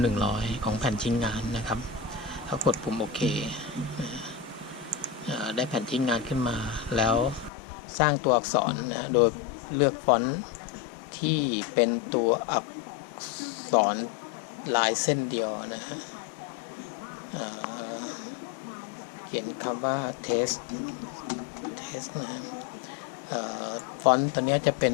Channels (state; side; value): drops out; right; at 7.5 s